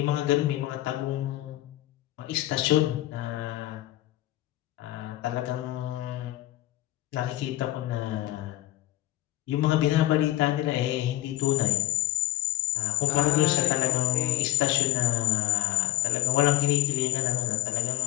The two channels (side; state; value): right; quieter; 15.9 dB